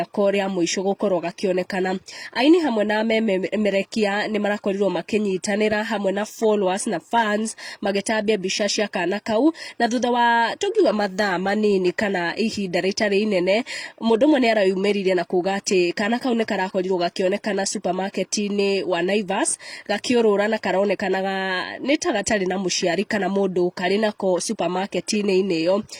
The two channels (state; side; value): identical; both; correlation 1.00